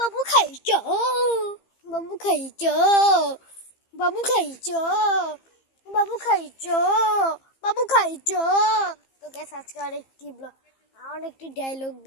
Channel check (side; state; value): right; late; 15 ms